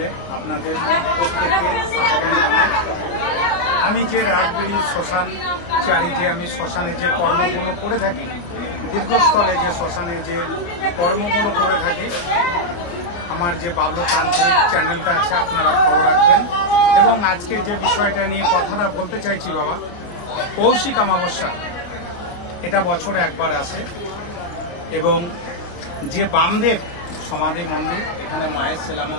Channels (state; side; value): late; right; 29 ms